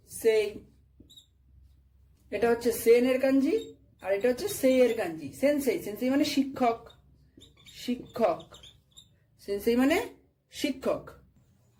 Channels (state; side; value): identical; both; correlation 1.00